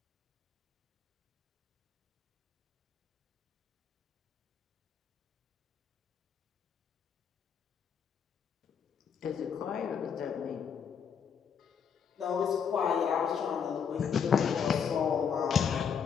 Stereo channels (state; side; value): quieter; right; 7.1 dB